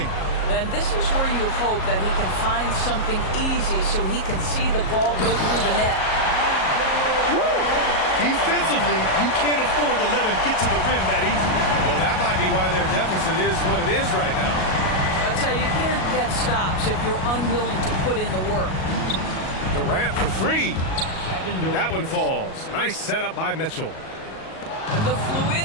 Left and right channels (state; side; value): late; right; 37 ms